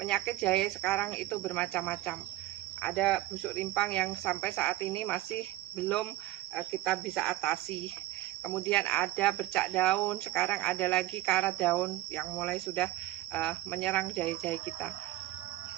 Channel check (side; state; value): left; quieter; 17.0 dB